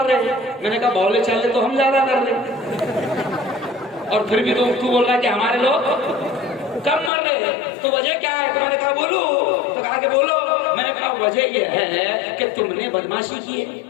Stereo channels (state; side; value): drops out; right; at 7.1 s